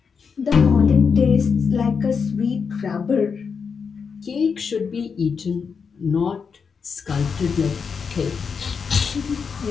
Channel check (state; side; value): quieter; right; 5.9 dB